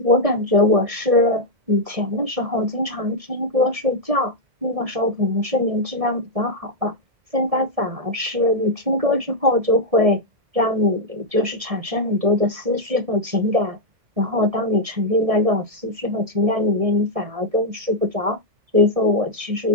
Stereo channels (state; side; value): late; left; 1.7 ms